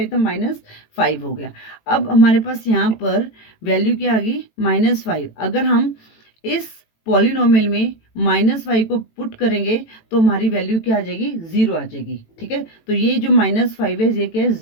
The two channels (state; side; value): late; right; 18 ms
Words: था, -5 हो गया। अब हमारे पास यहाँ पर वैल्यू क्या आ गई, -5। अगर हम इस पॉलिनोमियल में -5 को पुट करेंगे तो हमारी वैल्यू क्या आ जाएगी, 0 आ जाएगी। ठीक है, तो ये जो -5 है, ये क्या है,